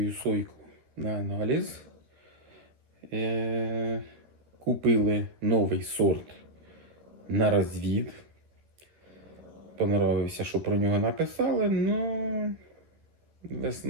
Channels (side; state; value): left; late; 13 ms